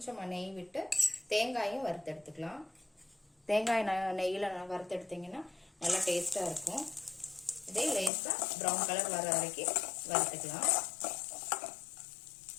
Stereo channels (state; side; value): drops out; right; at 8.1 s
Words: நெய் விட்டு தேங்காயும் வறுத்து எடுத்துக்கலாம். தேங்காய் நெய்யில வறுத்து எடுத்தீங்கன்னா நல்லா டேஸ்டா இருக்கும். இதே லேசா ப்ரௌன் கலர் வர வரைக்கும் வறுத்துக்கலாம்.